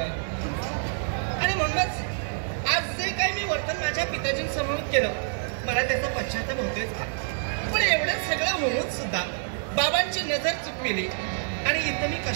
आहे. आणि म्हणूनच आज जे काही मी वर्तन माझ्या पिताजींसमोर केलं, मला त्याचा पश्चाताप होतोयच का. पण एवढं सगळं होऊन सुद्धा बाबांची नजर चुकविली आणि इथं मी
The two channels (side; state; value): left; silent; digital silence